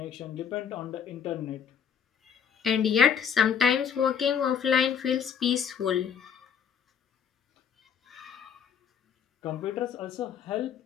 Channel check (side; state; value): right; quieter; 7.6 dB